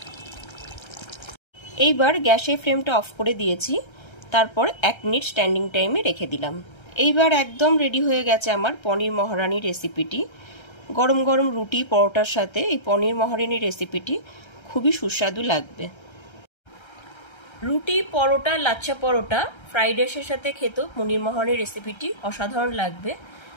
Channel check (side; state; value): right; late; 1.3 ms